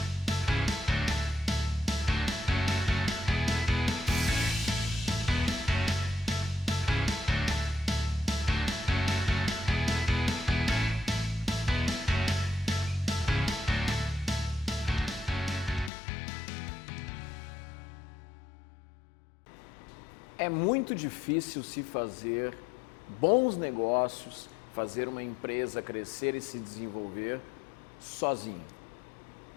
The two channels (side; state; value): right; drops out; at 15.9 s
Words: É muito difícil se fazer bons negócios, fazer uma empresa crescer e se desenvolver sozinho.